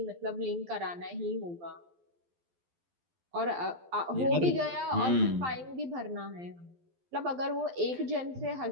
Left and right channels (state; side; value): late; left; 12 ms